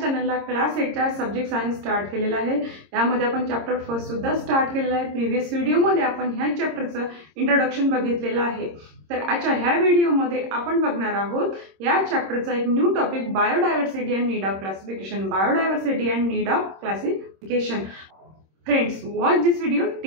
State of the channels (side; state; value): left; late; 26 ms